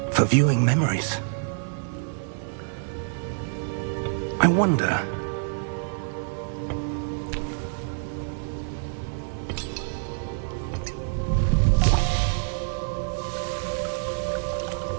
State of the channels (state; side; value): silent; left; digital silence